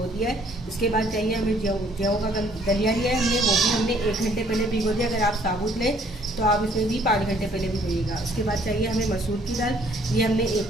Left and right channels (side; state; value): both; normal; correlation 0.62